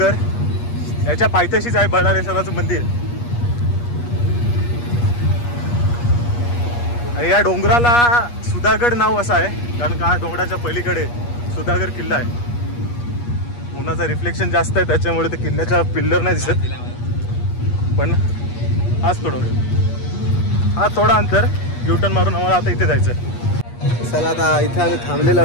याच्या पायथ्याशीच आहे बळालेश्वराचं मंदिर. आणि या डोंगराला सुधागड नाव असं आहे कारण का डोंगराच्या पलीकडे सुधागड किल्ला आहे. उन्हाचा रिफ्लेक्शन जास्त आहे त्याच्यामुळे ते किल्ल्याच्या पिल्लर नाही दिसत, पण हाच तो डोंगर. हा थोडा अंतर युटर्न मारून आम्हाला आता इथे जायचं आहे. चला आता इथे आम्ही थांबलेलो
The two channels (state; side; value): late; right; 8.4 ms